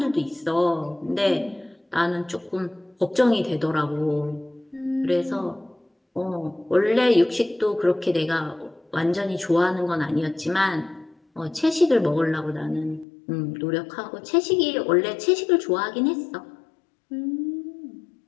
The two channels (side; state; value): right; drops out; at 13.1 s